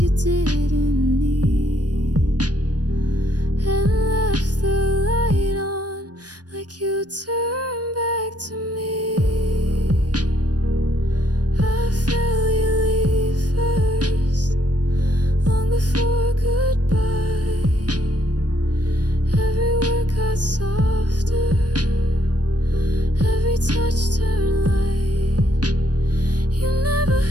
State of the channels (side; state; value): left; late; 0.69 ms